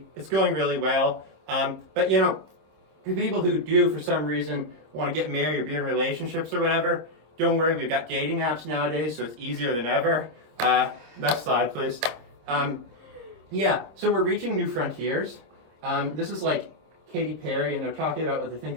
It's going really well. But for people who do, for some reason, want to get married or be in relationships or whatever, don't worry. We've got dating apps nowadays, so it's easier than ever. Next slide, please. So we're reaching new frontiers. This is like Katy Perry, and they're talking about what they think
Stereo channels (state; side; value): late; left; 26 ms